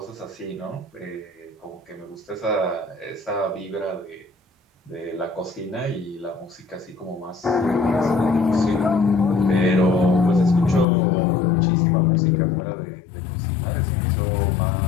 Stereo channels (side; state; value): right; drops out; at 10.9 s